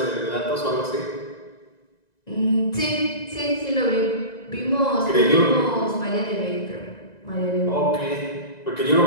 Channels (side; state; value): right; late; 1.9 ms